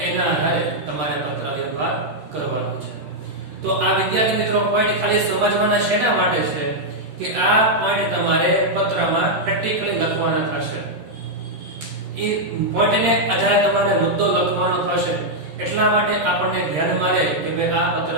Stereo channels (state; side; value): late; left; 13 ms